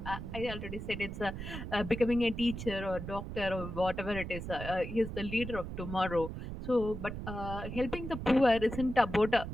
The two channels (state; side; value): noise; right; rumble, 7 dB below the sound